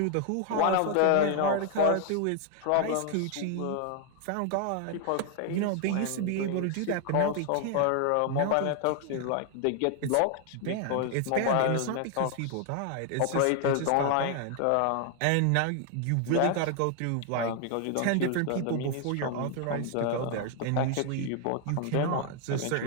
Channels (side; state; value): both; different; correlation 0.00